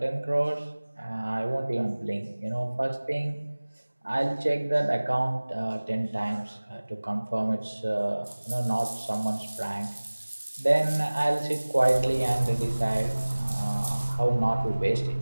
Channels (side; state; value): both; inverted; correlation -1.00